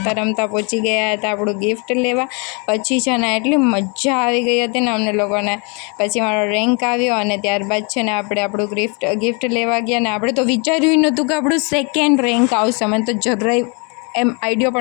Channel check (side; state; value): right; quieter; 33.5 dB